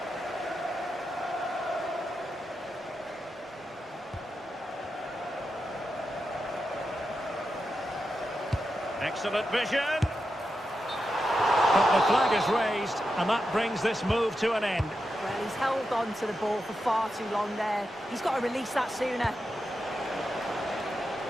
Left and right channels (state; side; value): normal; both; correlation 0.88